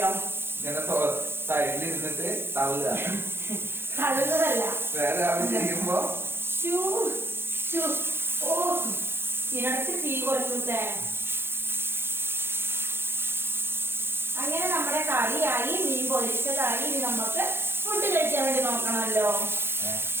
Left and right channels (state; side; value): late; left; 0.11 ms